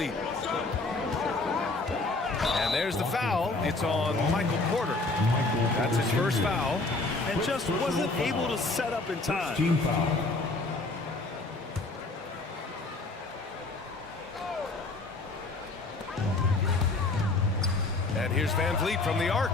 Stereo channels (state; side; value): quieter; right; 3.3 dB